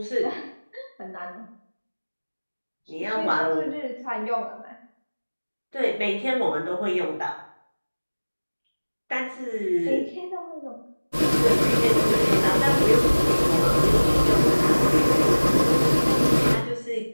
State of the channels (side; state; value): both; inverted; correlation -1.00